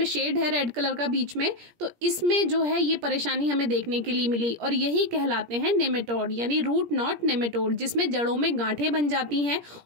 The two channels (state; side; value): late; left; 17 ms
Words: शेड है रेड कलर का बीच में, तो इसमें जो है ये परेशानी हमें देखने के लिए मिली और यही कहलाते हैं नेमेटोड यानी रूट नॉट नेमेटोड, जिसमें जड़ों में गांठें बन जाती हैं